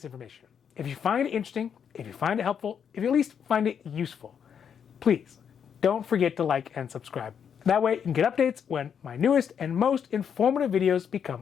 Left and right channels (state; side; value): quieter; right; 7.7 dB